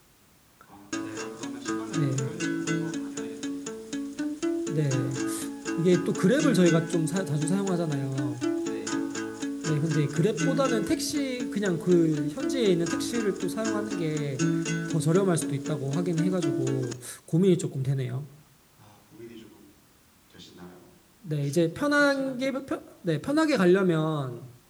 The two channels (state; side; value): identical; both; correlation 1.00